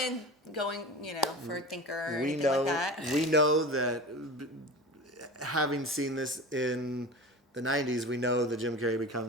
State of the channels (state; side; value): normal; both; correlation 0.32